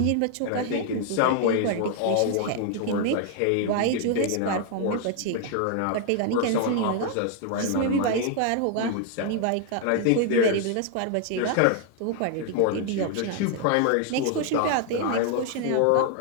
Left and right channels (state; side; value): different; both; correlation 0.00